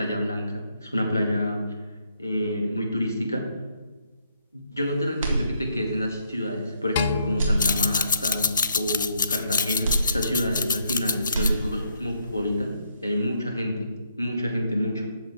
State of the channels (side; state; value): both; inverted; correlation -0.72